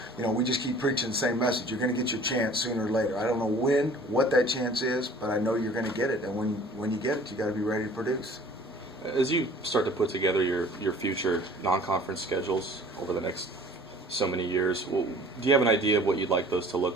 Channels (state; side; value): normal; both; correlation 0.49